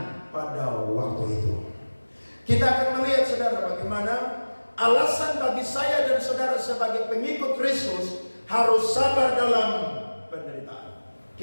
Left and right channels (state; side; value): inverted; both; correlation -1.00